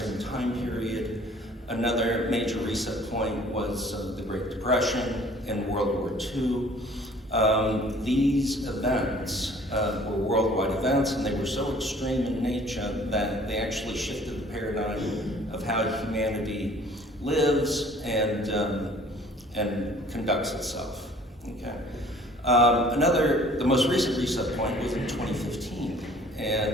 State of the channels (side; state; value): both; normal; correlation 0.53